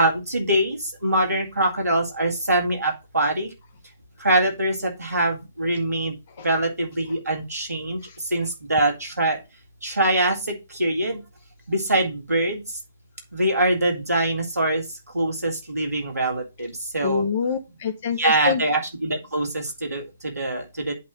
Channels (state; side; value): inverted; both; correlation -0.61